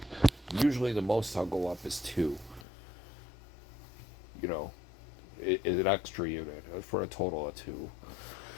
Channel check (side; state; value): right; drops out; at 2.7 s